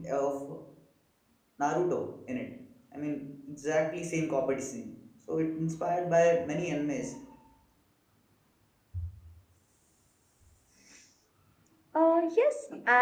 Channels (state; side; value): identical; both; correlation 1.00